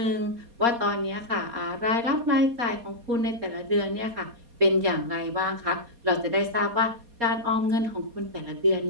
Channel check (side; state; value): left; late; 4.2 ms